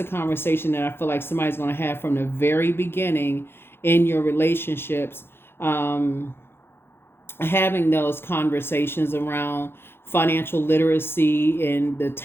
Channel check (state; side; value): late; right; 0.11 ms